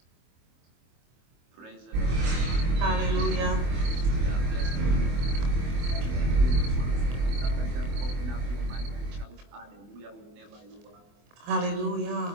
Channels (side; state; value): left; late; 24 ms